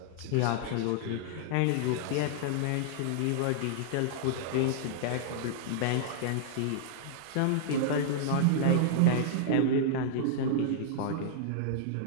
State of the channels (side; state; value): both; different; correlation -0.01